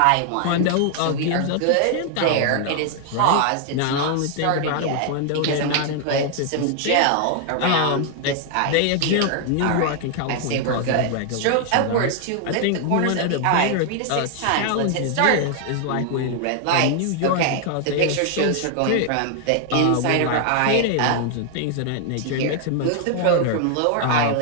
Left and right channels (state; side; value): different; both; correlation 0.00